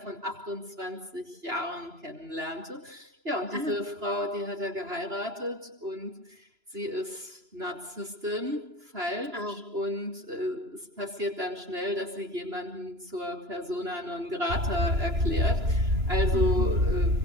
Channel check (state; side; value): late; left; 2.9 ms